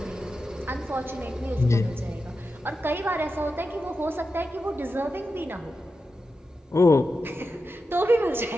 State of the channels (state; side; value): normal; both; correlation 0.90